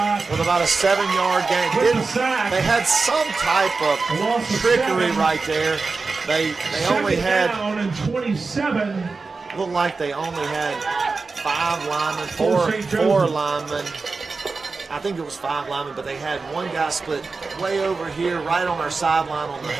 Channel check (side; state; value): left; quieter; 4.2 dB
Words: with about a 7-yard gain. They had some type of trickery right there. They only had, looked like they only had 5 linemen, four linemen. I think it was 5 linemen, but they had one guy split way over here, right on our sideline on the